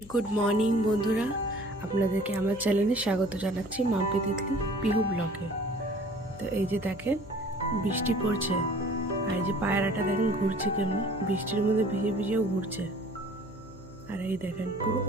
Good morning বন্ধুরা, আপনাদেরকে আমার চ্যানেলে স্বাগত জানাচ্ছি মাম্পি তিতলি পিহু ব্লগে। তো এই যে দেখেন বৃষ্টি পড়ছে, আর এই যে পায়রাটা দেখেন ঘুরছে কেমনি, বৃষ্টির মধ্যে ভিজে ভিজেও ঘুরছে। আর এই দেখেন পুরো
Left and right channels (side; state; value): left; noise; hum, 18 dB below the sound